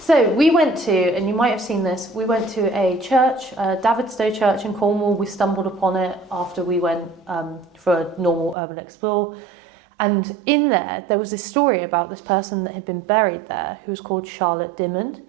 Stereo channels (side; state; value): left; drops out; at 8.6 s